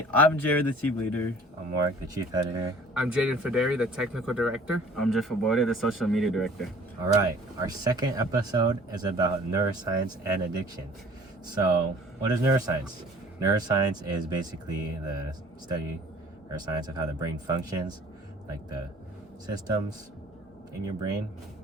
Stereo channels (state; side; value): normal; both; correlation 0.50